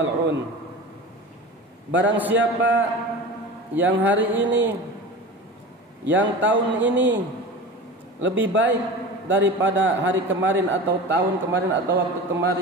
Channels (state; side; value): normal; both; correlation 0.32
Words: Barang siapa yang hari ini, yang tahun ini lebih baik daripada hari kemarin atau tahun kemarin atau waktu